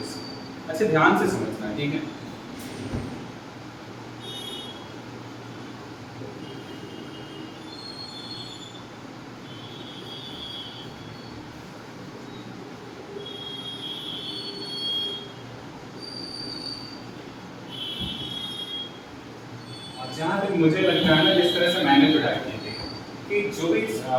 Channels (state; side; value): identical; both; correlation 1.00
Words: अच्छा, ध्यान से समझना, ठीक है. जहाँ तक मुझे लगता है ना, जिस तरह से मैंने पढ़ाई की थी कि जो भी